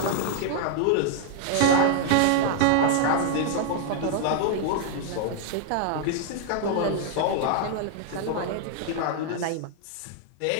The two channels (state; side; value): different; both; correlation 0.00